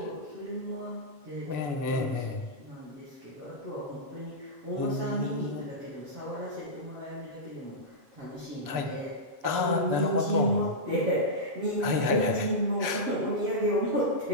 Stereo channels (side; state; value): left; late; 7.0 ms